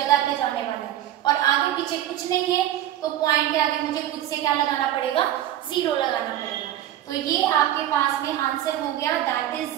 पे जाने वाला है और आगे पीछे कुछ नहीं है, तो पॉइंट के आगे मुझे खुद से क्या लगाना पड़ेगा, 0 लगाना पड़ेगा। तो ये आपके पास में आंसर हो गया, that is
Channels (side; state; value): left; quieter; 12.3 dB